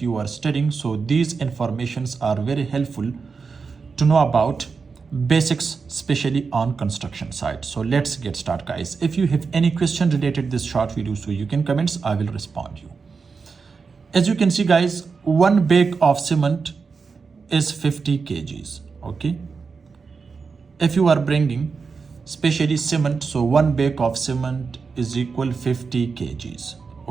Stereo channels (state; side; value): quieter; left; 5.0 dB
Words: are studying, so these informations are very helpful to know about basics, especially on construction site. So let's get started guys. If you have any question related to this short video, so you can comments, I will respond you. As you can see guys, one bag of cement is 50 kgs. Okay, if you are bringing especially cement, so one bag of cement is equal 50 kgs.